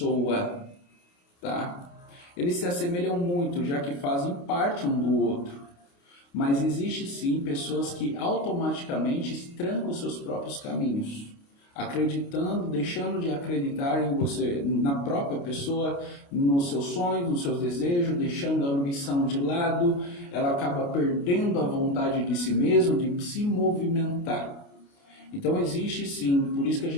tá? Eles se assemelham muito, já que fazem parte um do outro. Mas existe sim pessoas que automaticamente trancam os seus próprios caminhos, acreditando, deixando de acreditar em você, na própria pessoa, nos seus sonhos, nos seus desejos, deixando a ambição de lado, ela acaba perdendo a vontade de si mesmo, de se movimentar. Então existe sim, por isso que a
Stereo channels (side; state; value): right; late; 29 ms